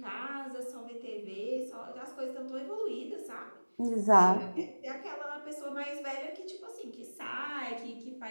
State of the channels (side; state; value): both; inverted; correlation -1.00